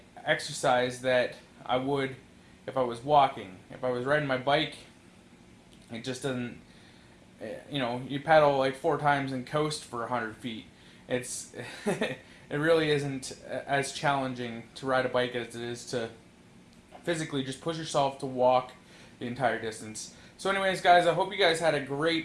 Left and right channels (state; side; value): identical; both; correlation 1.00